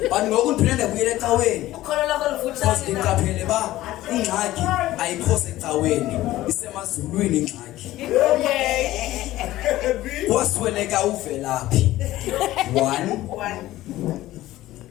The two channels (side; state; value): right; quieter; 15.7 dB